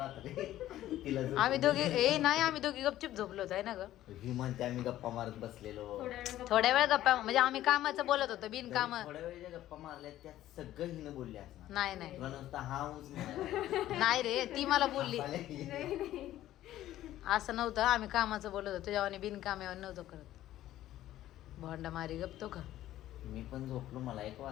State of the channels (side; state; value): right; quieter; 13.7 dB